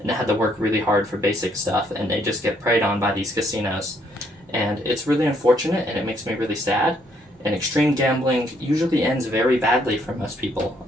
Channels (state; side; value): normal; both; correlation 0.70